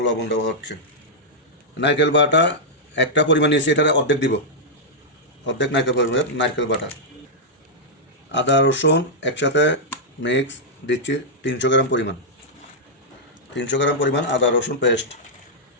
লবণ দেওয়া হচ্ছে। নারকেল বাটা একটা পরিমাণ নিয়েছি, এটার অর্ধেক দিব, অর্ধেক নারকেল বাটা। আদা রসুন একসাথে মিক্স দিচ্ছি 300 গ্রাম পরিমাণ, 300 গ্রাম পরিমাণ আদা রসুন পেস্ট।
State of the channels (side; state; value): both; normal; correlation -0.07